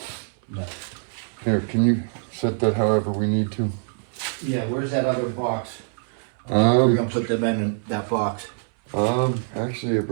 No. Here, can you set that however we need to? Yeah, where's that other box? We're gonna put them in that box. Actually I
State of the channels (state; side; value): silent; left; 61 dB below the other